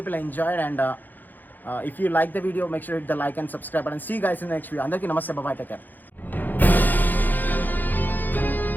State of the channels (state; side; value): late; right; 0.086 ms